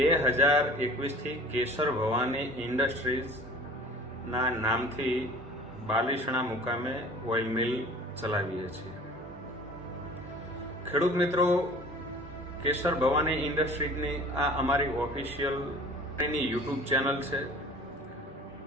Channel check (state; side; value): normal; both; correlation 0.45